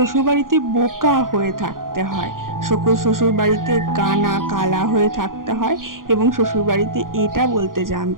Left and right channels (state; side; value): late; left; 0.90 ms